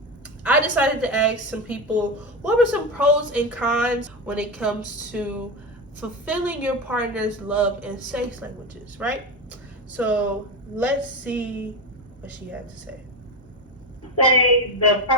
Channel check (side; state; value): both; normal; correlation 0.18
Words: I decided to ask some people what were some pros and cons when it comes to fulfilling your partner's love and sex languages, right? So let's see what she had to say. Say the